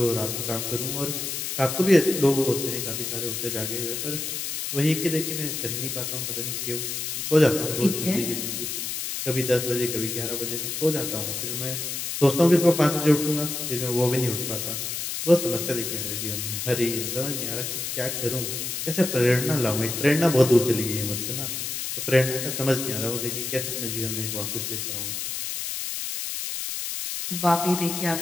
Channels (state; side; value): noise; left; hiss, 4 dB below the sound